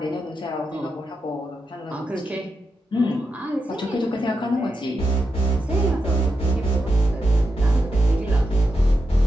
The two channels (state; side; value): normal; both; correlation 0.86